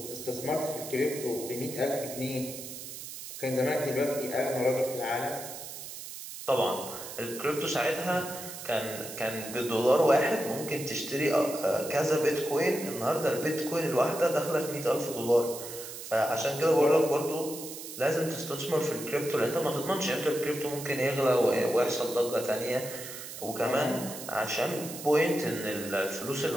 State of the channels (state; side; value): noise; right; hiss, 10 dB below the sound